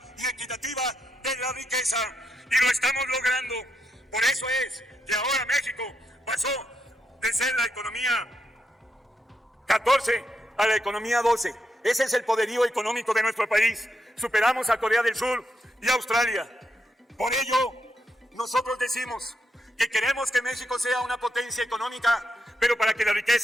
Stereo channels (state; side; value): normal; both; correlation 0.82